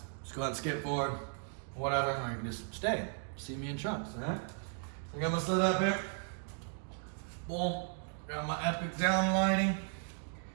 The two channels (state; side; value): silent; left; 54 dB below the other